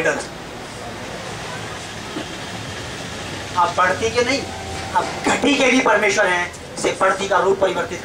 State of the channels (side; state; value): both; identical; correlation 1.00